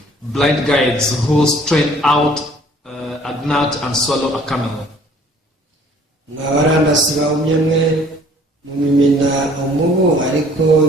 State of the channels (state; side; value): normal; both; correlation 0.55